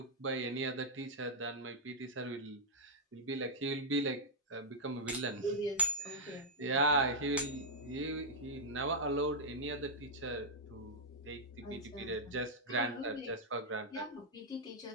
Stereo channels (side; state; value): both; normal; correlation -0.05